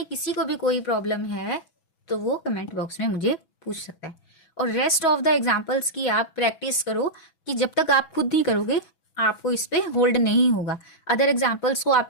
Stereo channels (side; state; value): right; late; 6.1 ms